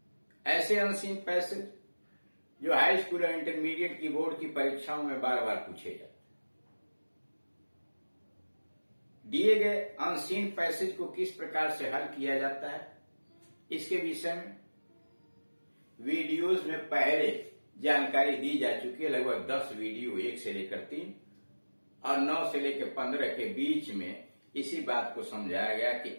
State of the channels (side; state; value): both; inverted; correlation -1.00